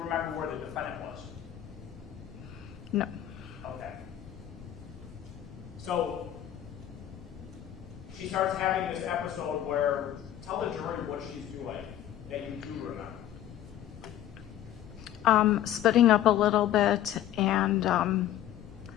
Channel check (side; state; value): right; quieter; 11.8 dB